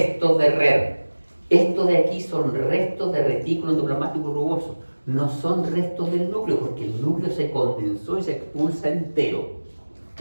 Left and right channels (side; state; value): both; inverted; correlation -1.00